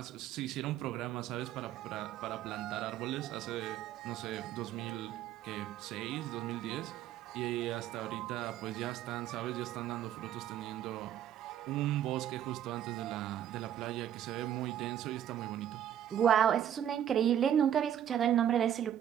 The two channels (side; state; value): left; quieter; 10.5 dB